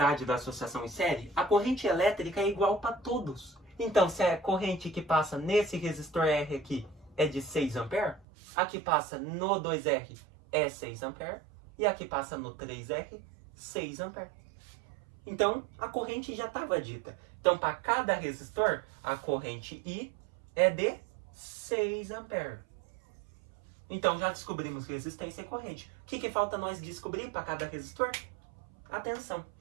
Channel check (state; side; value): drops out; left; at 8.2 s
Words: da associação em série, a corrente elétrica é igual para todos. Então, se a corrente que passa nesse resistor R aqui é de 6 A, a que passa no 2R é 6 A, e a que passa no 3R, 6 A. Então, a corrente já estava dita. Então, para cada resistor, a corrente I é de 6 A. Então, já descobrimos resistência e corrente. O que falta nós descobrir para cada resistor? A tensão.